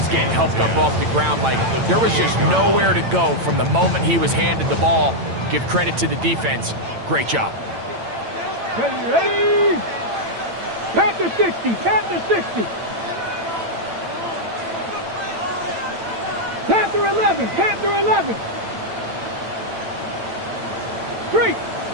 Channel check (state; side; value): late; left; 8.9 ms